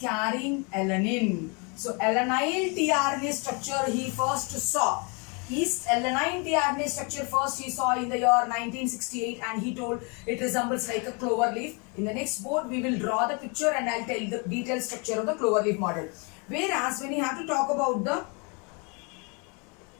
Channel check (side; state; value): right; quieter; 33.0 dB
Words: carrying alanine. So alanine tRNA structure he first saw. Yeast alanine tRNA structure first he saw in the year 1968, and he told it resembles like a clover leaf. In the next board we will draw the picture and I'll tell the detailed structure of the clover leaf model. Whereas when you have to talk about the